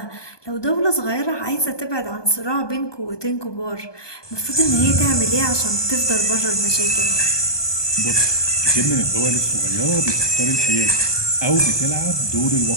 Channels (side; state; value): right; late; 1.2 ms